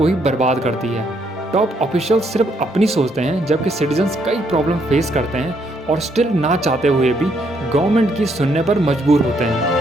ही बर्बाद करती है। टॉप ऑफिशियल्स सिर्फ अपनी सोचते हैं, जबकि सिटीजन्स कई प्रॉब्लम फेस करते हैं और स्टिल ना चाहते हुए भी गवर्नमेंट की सुनने पर मजबूर होते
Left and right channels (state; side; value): normal; both; correlation 0.72